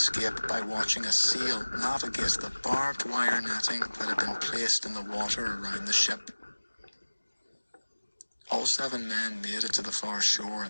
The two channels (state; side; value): inverted; both; correlation -1.00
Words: by watching a seal navigate the barbed wire netting that had been placed in the water around the ship. All 7 men made it to the far shore